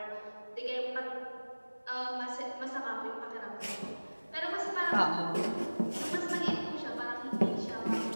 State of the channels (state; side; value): inverted; both; correlation -1.00